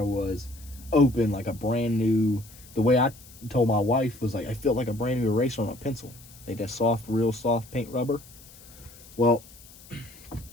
was open like a brand new, the way I told my wife was like, I felt like a brand new eraser on a pencil. Like that soft, real soft paint rubber. Well,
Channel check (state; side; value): noise; left; hiss, 21 dB below the sound